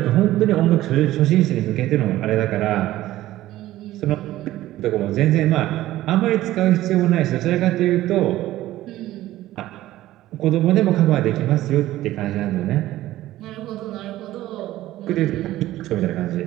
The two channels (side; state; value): left; quieter; 15.2 dB